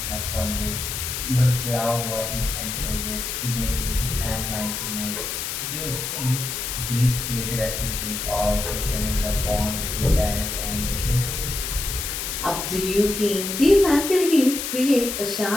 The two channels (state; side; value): noise; left; hiss, 4 dB below the sound